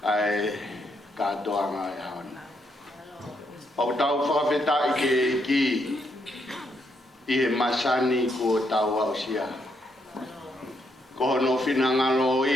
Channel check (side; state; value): both; normal; correlation 0.76